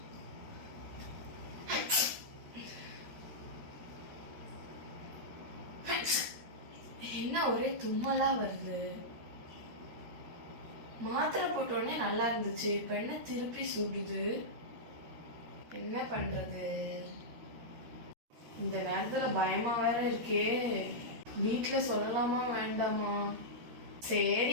என்ன ஒரே தும்மலா வருது. மாத்திரை போட்டோடனே நல்லா இருந்துச்சு, இப்ப என்ன திருப்பி சுடுது. என்ன பண்றது? இந்த நேரத்துல பயமா வேற இருக்கே. வீட்டுல சொல்லலாமா வேண்டாமா?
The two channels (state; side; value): late; left; 13 ms